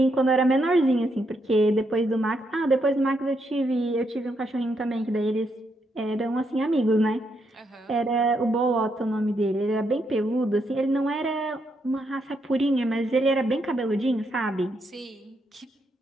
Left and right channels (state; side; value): normal; both; correlation 0.78